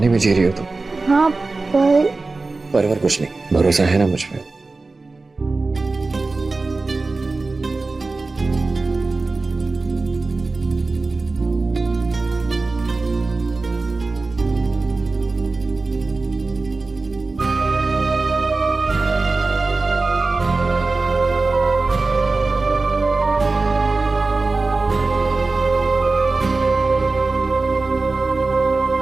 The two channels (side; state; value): left; quieter; 3.6 dB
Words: में जी रही हो तुम? हाँ पर कुछ नहीं, भरोसा है ना मुझ पे?